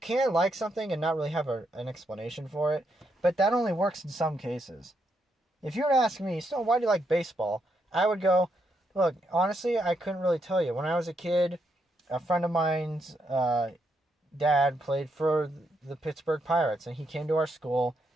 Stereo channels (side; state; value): both; normal; correlation 0.79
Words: like something and not really have an explanation for it, but that only works in some cases. If you were to ask me, Stone, why do you like baseball? I would go, look, honestly, I couldn't really tell you. When I was a kid, a friend of mine's dad played for the Pittsburgh Pirates, and he came to our school,